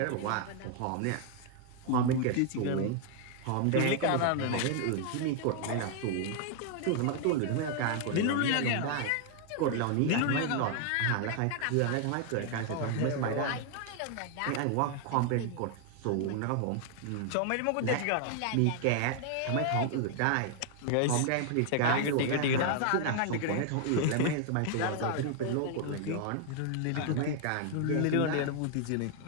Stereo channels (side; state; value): both; different; correlation 0.00